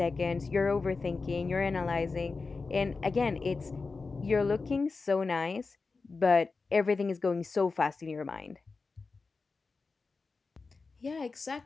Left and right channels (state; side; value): quieter; right; 4.2 dB